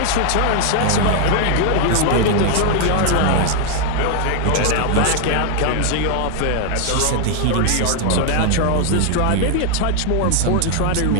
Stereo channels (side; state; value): both; different; correlation 0.00